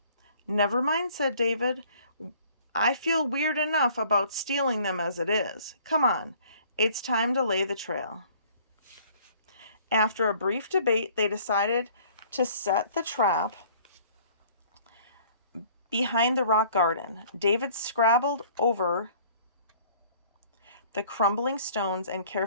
"Never mind," said David. "I feel weird enough about stealing them as it is. Come on, it's time to lay the trail." After a brief debate, they decided to set the trap behind the rock garden. David scrabbled over the crumbling stones and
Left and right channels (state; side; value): inverted; both; correlation -0.55